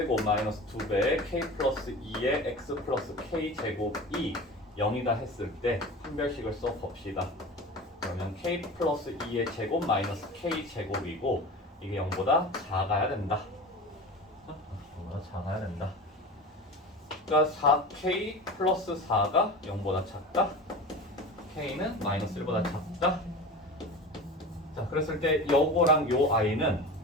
마이너스 2배의 k 플러스 2의 x 플러스 k 제곱이 0이다 했을 때 판별식을 써봅시다. 그러면 k 플러스 2의 제곱 마이너스 k 제곱이고 이게 0보다 작아야 된다. 0보다 작아야 된다. 그러니까 4k 플러스 4가 0보다 작다. k는 마이너스 1보다 작다. 자, 그랬을 때 요거랑 요 i는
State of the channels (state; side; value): normal; both; correlation 0.33